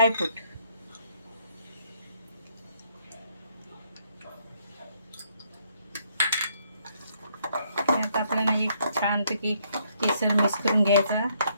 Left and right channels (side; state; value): both; inverted; correlation -0.70